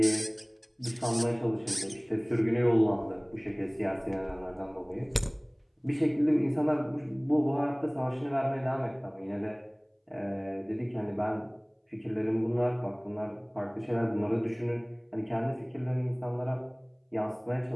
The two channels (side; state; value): both; identical; correlation 1.00